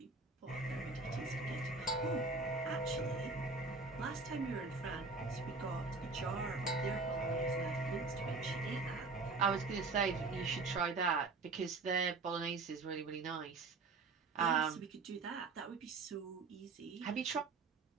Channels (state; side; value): quieter; left; 4.0 dB